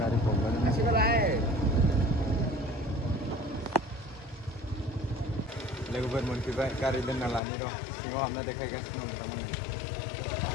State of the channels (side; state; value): right; drops out; at 7.4 s